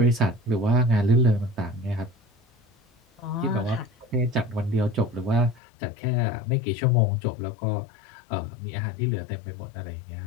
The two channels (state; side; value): drops out; right; at 5.6 s